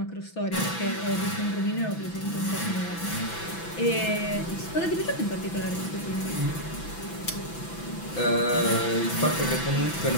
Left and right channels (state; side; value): late; right; 6.0 ms